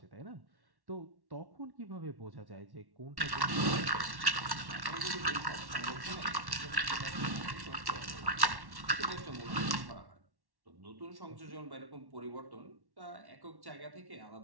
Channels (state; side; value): late; left; 1.1 ms